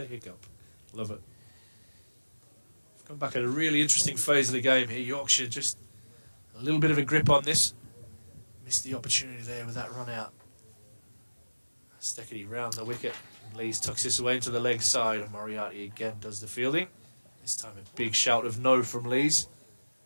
hiccup. Love it. We've come back at a really interesting phase of the game here. Yorkshire just a little bit of a grip on this. Missed the opportunity there with that run out. Stickety round the wicket. Lees tucks this away into the leg side, and Moriarty again does the fielding. This time a big shout of no from Lees.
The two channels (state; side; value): inverted; both; correlation -1.00